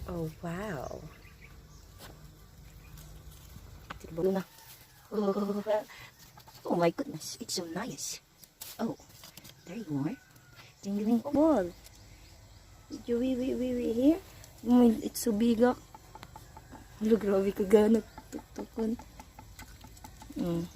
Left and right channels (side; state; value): both; identical; correlation 1.00